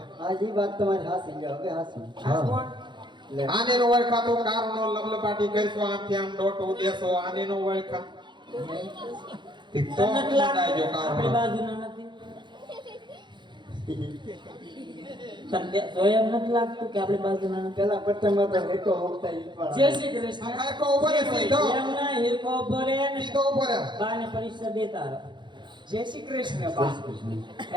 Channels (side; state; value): left; late; 0.22 ms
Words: આજ ઈ વાત તમારી હાસી ગયો હવે હાસી આ કોણ? લે આને નો વળખાતો કારનો લબલબાટી કરશો આમથી આમ ડોટો દેશો આને નો વળખા ઠીક તો મુંડાઈ જો આપણી કારનો બાજુના નથી તને જોયા એમ નથી લાગતું કે આપણી બાજુના નથી પેલા પટ્ટામાં તો હેકો હોકતા ઈ પણ જય શ્રી કૃષ્ણ આ કારકો ઉપર છે, સીધો એમ ના હિરકો ઉભો રહે ને સીધો ઉપર છે. બાને પરીક્ષા દે તાર જય શ્રી કૃષ્ણ બા